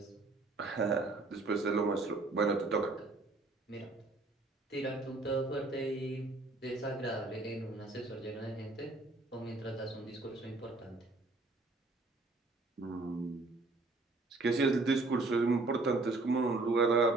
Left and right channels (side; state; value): left; quieter; 3.3 dB